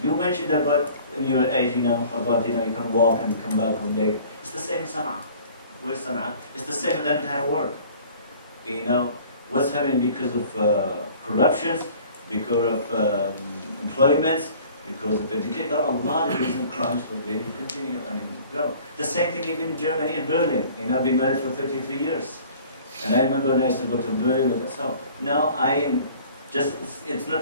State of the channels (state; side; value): inverted; both; correlation -0.49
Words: You mentioned about in your age, about you can walk and come back home late. It's the same in Sana'a. Where's Sana'a? It's the same in the entire world. What's happening because of corruptions, because of employments, because of education. There are a lot of recent crimes for they continue. The same thing even in Germany and Berlin. I've been married for 33 years. And I remember when I used to go to Berlin and so. Now I am just, it's